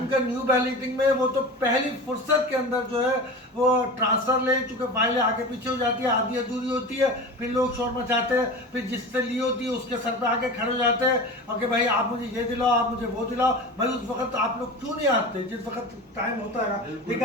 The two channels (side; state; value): both; normal; correlation 0.31